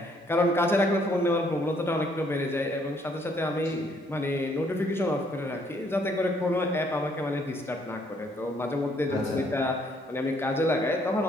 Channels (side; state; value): both; normal; correlation 0.67